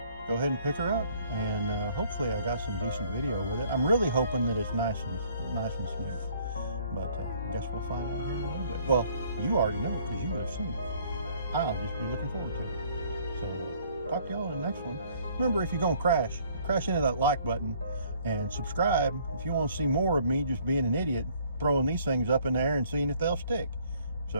go ahead and pick her up, and hopefully I got some decent video with it. I'm really hoping that it's nice and smooth. But I guess we'll find out here in a little bit. Well, you already know because you would have seen it. I'll just be looking forward to it. So talk to y'all in the next one. Remember, if you're going to crash into that like button and subscribe if you want to see more of me just being an idiot, throwing these things up in the air and seeing if they'll stick.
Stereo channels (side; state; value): both; inverted; correlation -0.60